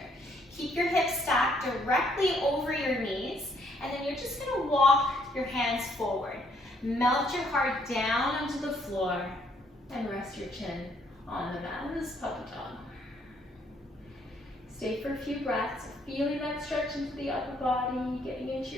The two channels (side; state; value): both; normal; correlation 0.68